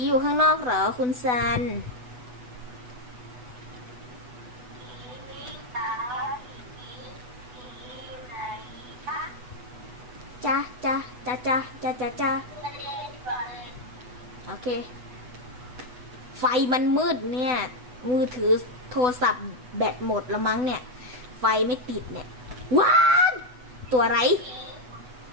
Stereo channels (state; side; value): late; left; 8.1 ms